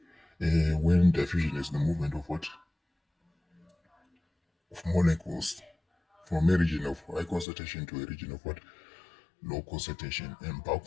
When diffusion is the movement of what? Of molecules from a region of high concentration to a region of what? Low concentration. And bulk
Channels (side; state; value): right; drops out; at 7.5 s